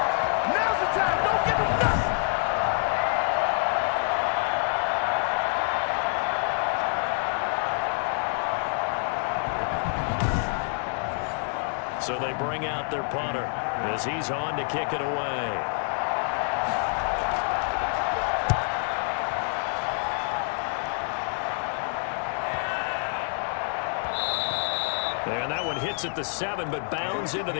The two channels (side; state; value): right; silent; 57 dB below the other